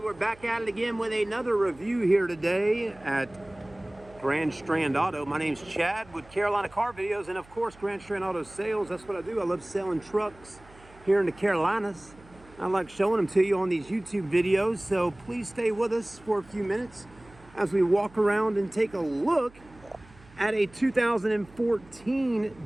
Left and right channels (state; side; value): noise; right; hum, 25 dB below the sound